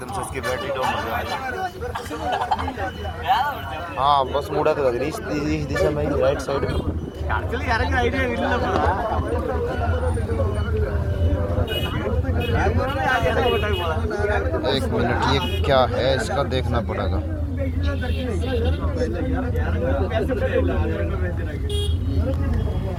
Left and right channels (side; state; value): both; identical; correlation 1.00